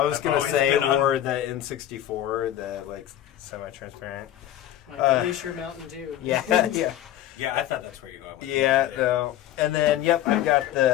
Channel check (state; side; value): quieter; right; 12.5 dB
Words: was going to always say, been on- or the N64, the semi-transparent. My Glacier Mountain Dew. Yeah, yeah. Yeah, I thought that's where you're going with Yeah, that. no. And then, yep, I've got